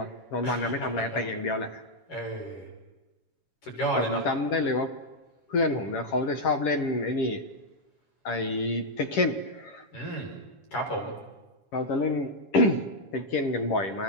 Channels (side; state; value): right; late; 7.2 ms